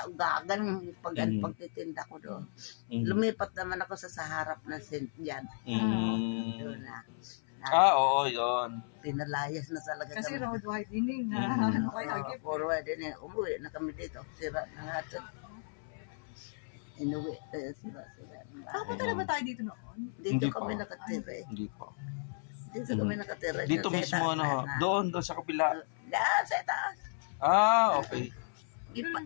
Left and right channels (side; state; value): right; silent; 55 dB below the other